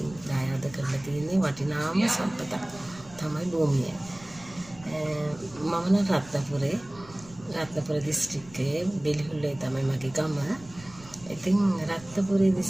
දායාද කරලා තියෙන වටිනාම සම්පත තමයි භූමිය. මම නම් රත්නපුර දිස්ත්‍රික්කයේ බෙලිහුල්ලේ තමයි මගේ ගම. ඉතින් රත්නපුර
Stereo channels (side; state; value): right; noise; rumble, 21 dB below the sound